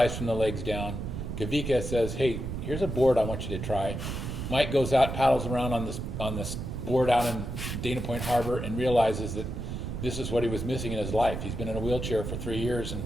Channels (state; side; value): noise; right; rumble, 5 dB below the sound